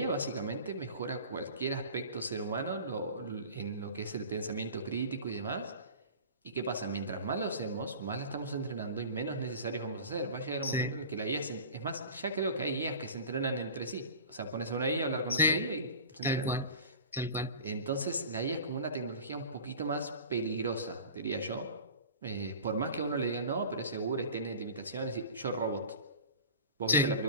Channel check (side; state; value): both; inverted; correlation -0.38